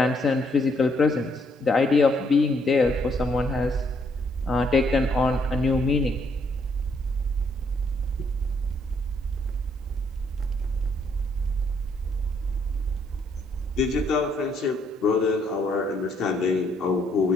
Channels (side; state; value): both; normal; correlation 0.70